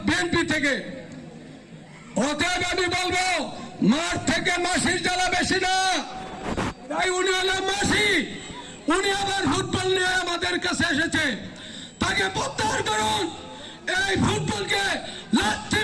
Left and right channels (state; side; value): identical; both; correlation 1.00